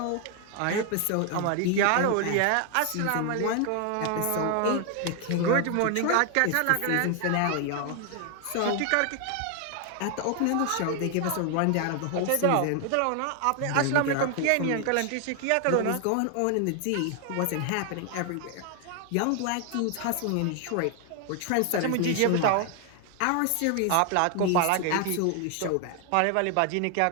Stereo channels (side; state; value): both; different; correlation 0.00